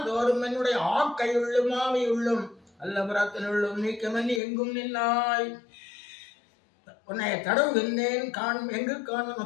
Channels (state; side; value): drops out; right; at 4.4 s